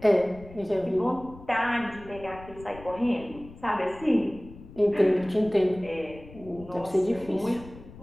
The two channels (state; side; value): noise; left; rumble, 18 dB below the sound